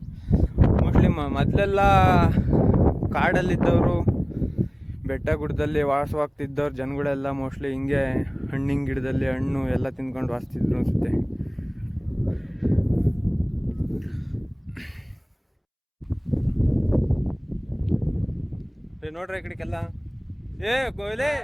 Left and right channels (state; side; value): identical; both; correlation 1.00